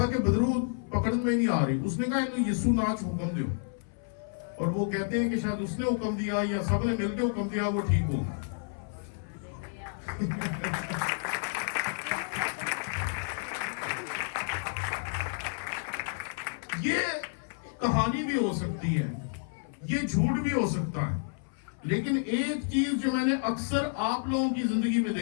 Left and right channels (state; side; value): silent; right; 58 dB below the other